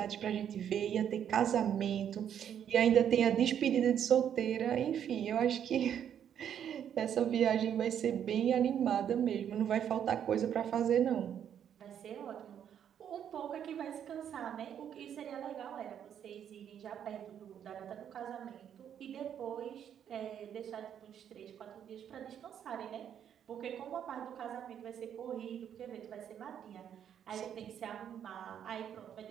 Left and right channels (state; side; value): quieter; left; 9.2 dB